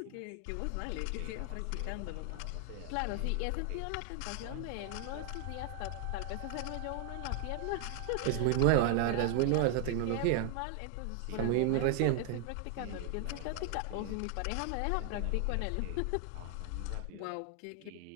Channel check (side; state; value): both; different; correlation 0.00